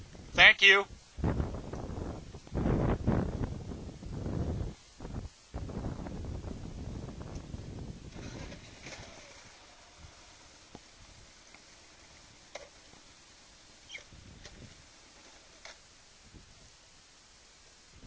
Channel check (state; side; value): identical; both; correlation 1.00